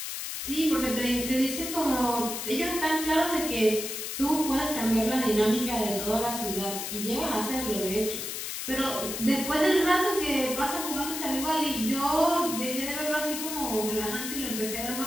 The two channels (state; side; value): noise; left; hiss, 5 dB below the sound